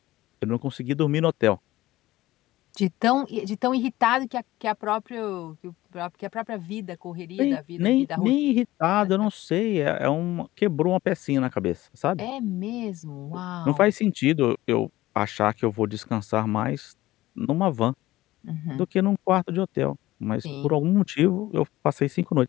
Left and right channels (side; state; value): right; quieter; 16.8 dB